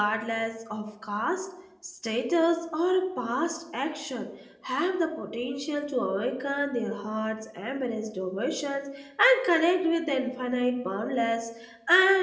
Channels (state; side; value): identical; both; correlation 1.00